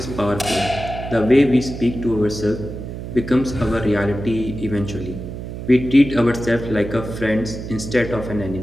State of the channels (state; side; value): noise; right; hum, 8 dB below the sound